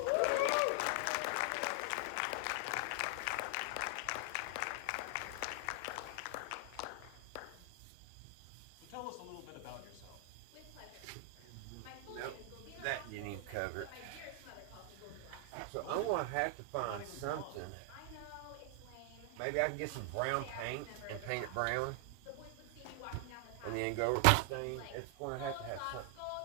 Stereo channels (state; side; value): different; both; correlation 0.00